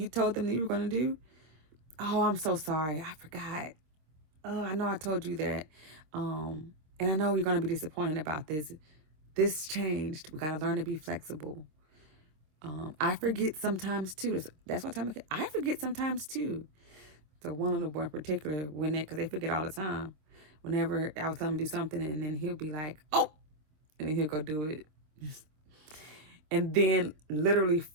told them that you were going to do. Oh, I'm so sorry. I forgot. Oh, I know I told you that. And I know you're going to be disappointed about this. This changed. We got to learn to be flexible. I forget sometimes too. That's what time I forget sometimes too. So one little boy in particular, because they forget all the time. Whenever I was telling him to do something, and then he'll be like, "Oh," and then he'll go do it. And then literally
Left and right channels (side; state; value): left; late; 26 ms